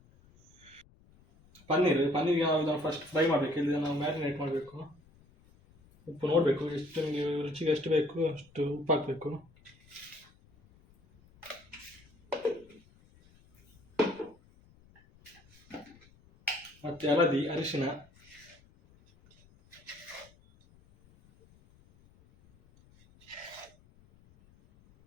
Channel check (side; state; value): left; noise; rumble, 28 dB below the sound